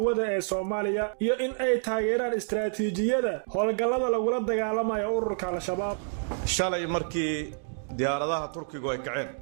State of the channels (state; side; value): silent; left; 59 dB below the other